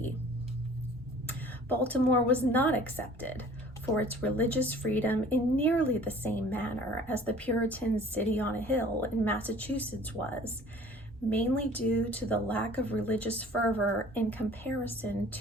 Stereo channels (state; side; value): normal; both; correlation 0.49